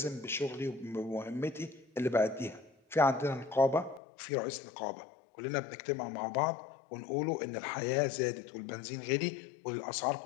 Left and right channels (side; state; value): right; drops out; at 4.0 s